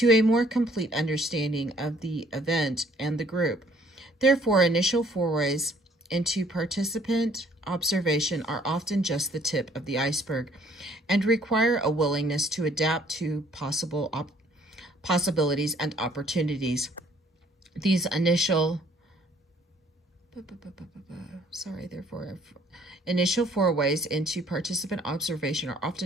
a more complete understanding of the event and the group. Therefore, initial forays into participant observation are often just the tip of the iceberg and require a willingness to adapt to possibilities and opportunities. These initial Sorry, therefore, initial forays into participant observation are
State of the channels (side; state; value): both; normal; correlation 0.61